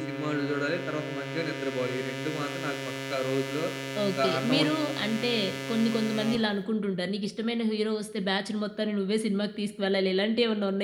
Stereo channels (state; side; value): identical; both; correlation 1.00